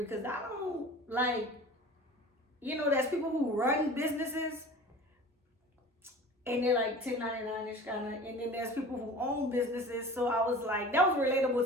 I don't like, there's people who run businesses and they're like 1099-ish kind of, and then there's people who own businesses. So I was like, that was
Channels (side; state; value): both; normal; correlation 0.40